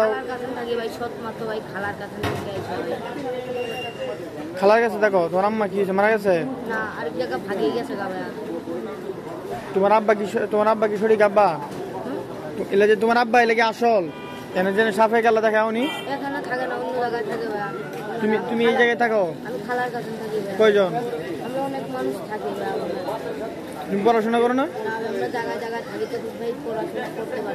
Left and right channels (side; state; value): both; identical; correlation 1.00